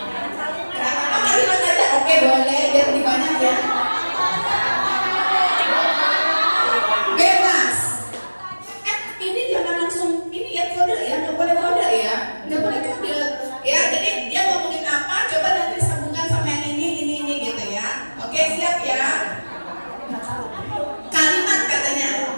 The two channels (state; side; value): inverted; both; correlation -1.00